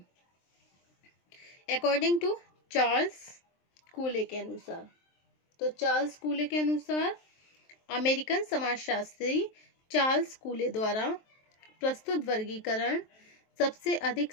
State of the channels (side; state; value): right; late; 23 ms